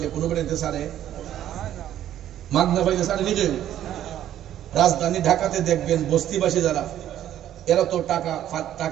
কোনো বেড়াইতে সারে, মাগনা পাইলে সারে নিজে। রাজধানী ঢাকাতে দেখবেন বস্তিবাসী যারা, এরা তো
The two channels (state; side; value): quieter; left; 11.7 dB